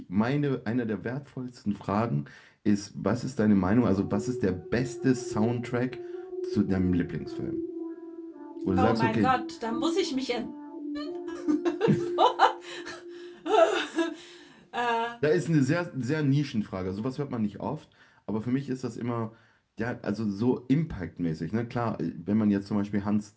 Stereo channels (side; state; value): both; identical; correlation 1.00